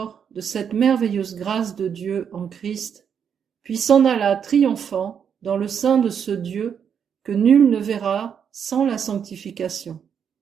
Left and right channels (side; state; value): left; quieter; 7.6 dB